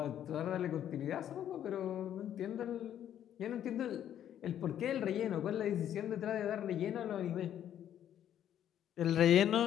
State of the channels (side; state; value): right; quieter; 10.5 dB